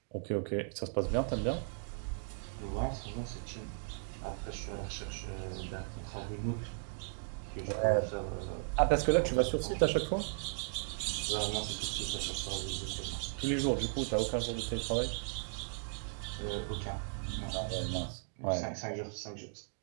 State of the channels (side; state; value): left; silent; digital silence